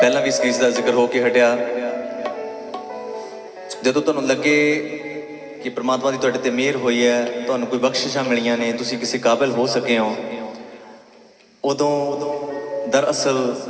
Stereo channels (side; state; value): both; identical; correlation 1.00